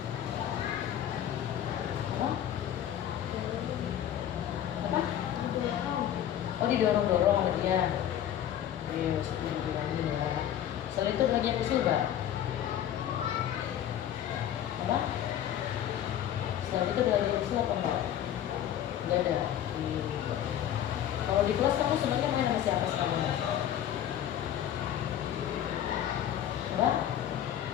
Apa? Apa? Oh didorong-dorong sama dia. Yes, dibilangin ya. Selain itu belajar usul gak? Apa? Selain itu belajar usul apa enggak? Enggak ada. Kalau di kelas kamu sebenarnya main sama siapa sekarang? Apa?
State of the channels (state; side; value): quieter; right; 10.8 dB